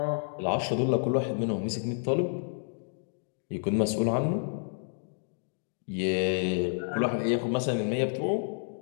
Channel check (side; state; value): right; silent; 58 dB below the other